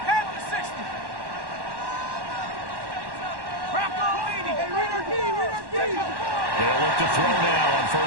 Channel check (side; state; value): left; late; 1.1 ms